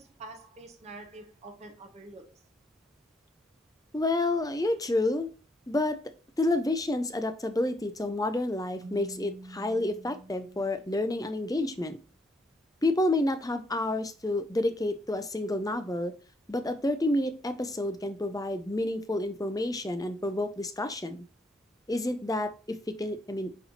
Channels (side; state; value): both; normal; correlation 0.72